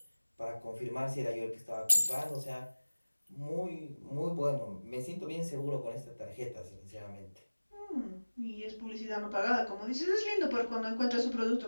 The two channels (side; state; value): both; inverted; correlation -1.00